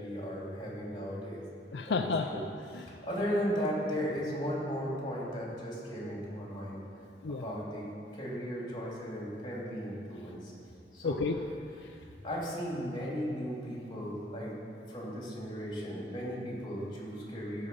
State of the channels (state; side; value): normal; both; correlation 0.54